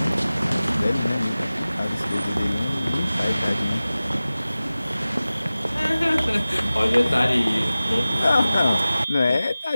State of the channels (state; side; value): inverted; both; correlation -0.97